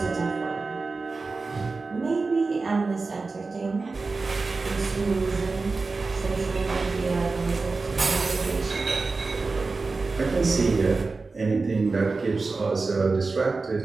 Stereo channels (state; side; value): quieter; left; 4.0 dB